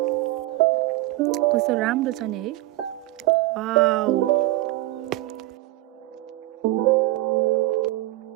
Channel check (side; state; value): left; quieter; 17.4 dB